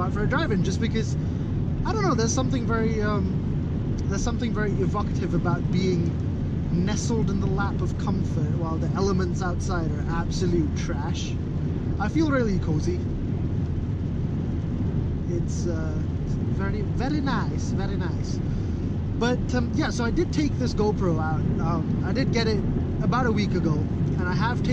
for a drive in, just because, I don't know, there's something very evocative about being nestled in the lap of comfort while the elements outside are absolute trash. I feel really cozy. It's very, very nice, very nice. But yeah, so I did take this GoPro out. I did get it about a week ago, and I have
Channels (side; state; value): both; identical; correlation 1.00